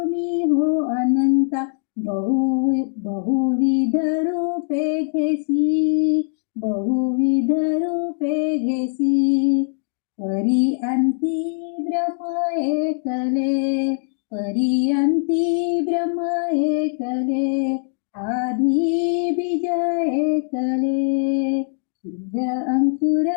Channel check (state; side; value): silent; right; digital silence